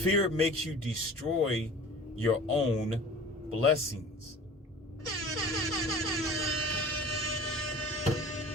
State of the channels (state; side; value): normal; both; correlation 0.42